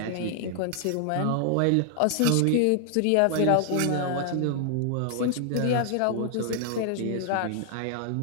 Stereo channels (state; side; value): different; both; correlation 0.00